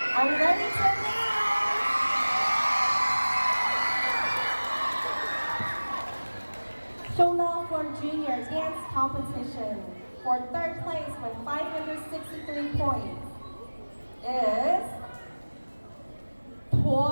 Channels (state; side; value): inverted; both; correlation -1.00